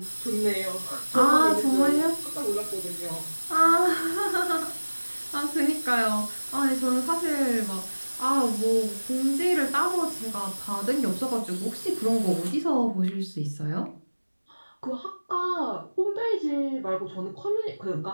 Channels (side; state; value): both; inverted; correlation -1.00